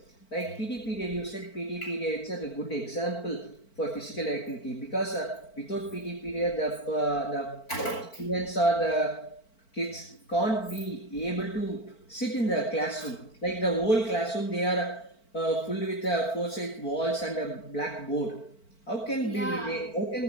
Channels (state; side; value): late; right; 4.5 ms